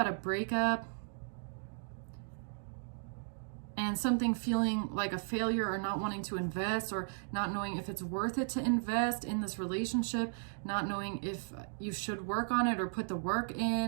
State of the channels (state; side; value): silent; left; digital silence